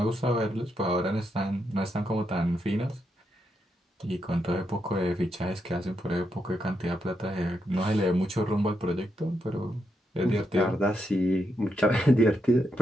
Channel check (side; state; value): both; normal; correlation 0.82